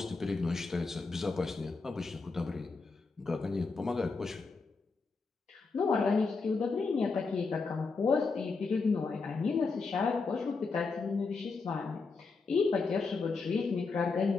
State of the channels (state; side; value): quieter; right; 4.3 dB